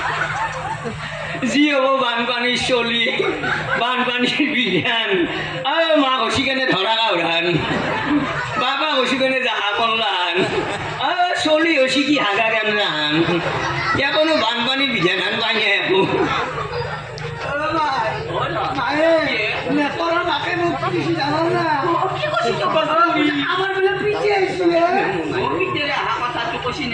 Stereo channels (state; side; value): identical; both; correlation 1.00